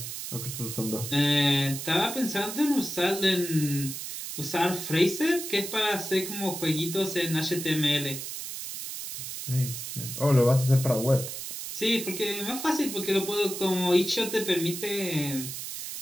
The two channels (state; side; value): noise; right; hiss, 7 dB below the sound